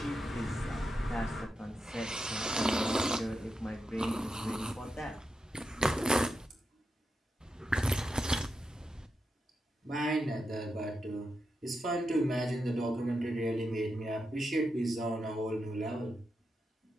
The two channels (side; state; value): both; normal; correlation 0.86